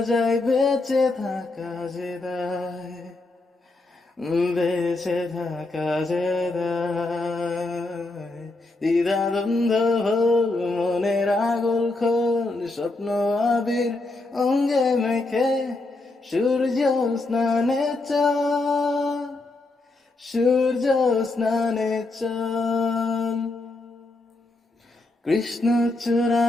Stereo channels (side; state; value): right; quieter; 3.1 dB